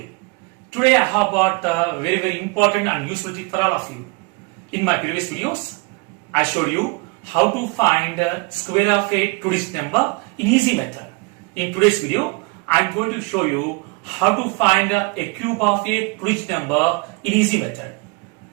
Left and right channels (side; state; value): left; quieter; 28.3 dB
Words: Today I have got a very important and useful tip for all of you. In my previous videos, I showed you how to find square of a two-digit number in easy method. In today's video, I am going to show you how to find a cube of a two-digit number in easy method.